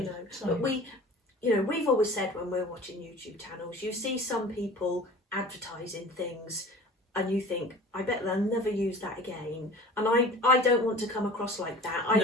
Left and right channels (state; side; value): normal; both; correlation 0.41